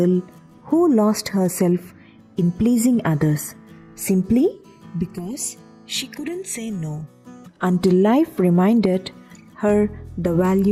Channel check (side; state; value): both; identical; correlation 1.00